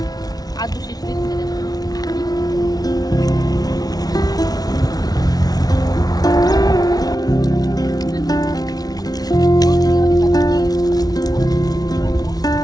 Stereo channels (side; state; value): right; late; 0.19 ms